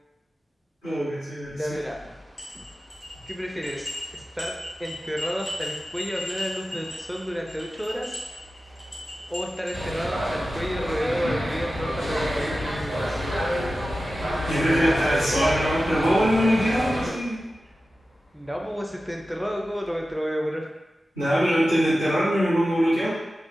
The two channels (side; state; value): both; normal; correlation 0.94